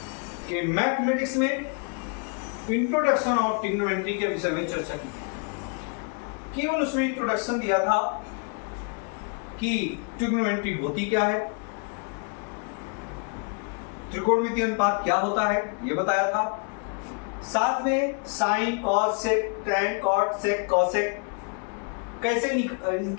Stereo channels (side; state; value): right; quieter; 38.4 dB